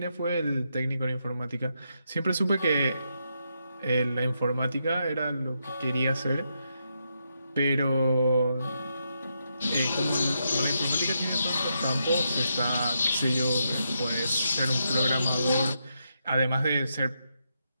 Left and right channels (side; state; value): both; inverted; correlation -0.82